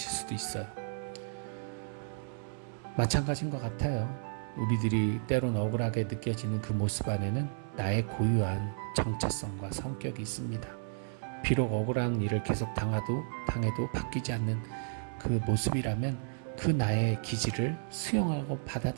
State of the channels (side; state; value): left; silent; 56 dB below the other